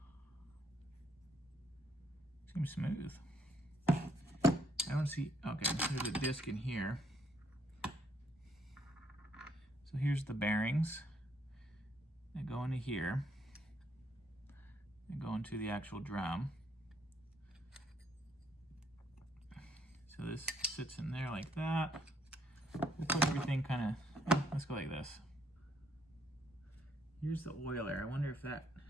Seems smooth. I don't see, okay, there's a disc in here. So here's the bearings. They go into here. They go into the actual drum. So this sits in there like that. We'll put everything kind of, let's go like this. Here's the oiler. I wonder if that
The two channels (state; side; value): normal; both; correlation 0.70